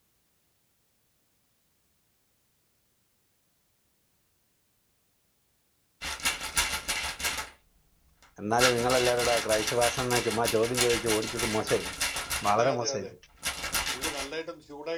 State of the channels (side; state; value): both; identical; correlation 1.00